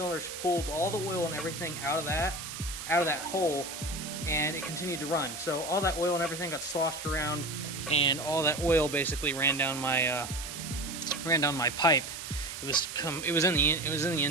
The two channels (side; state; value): right; noise; hiss, 8 dB below the sound